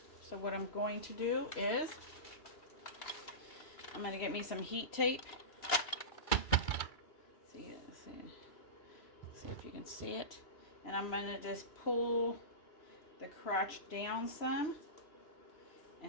So what I'm going to do is I'm going to get me some heat tape. See if you can see it. And I'm going to just pull the crotch down some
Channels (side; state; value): right; late; 3.0 ms